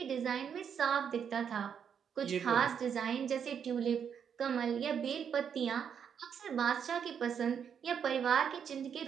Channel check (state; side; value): quieter; left; 7.7 dB